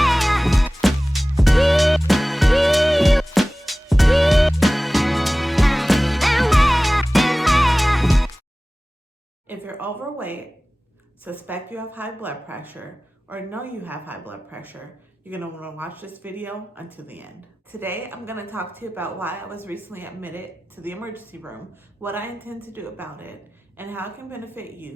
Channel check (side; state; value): both; normal; correlation 0.97